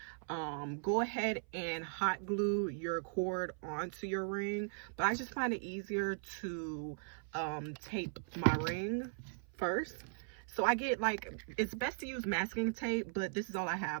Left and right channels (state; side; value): silent; left; 52 dB below the other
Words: go ahead and hot glue your cord onto your ring, but I just find it easier to tape my ring first. So I get, like, it's best to use masking tape, but this is all I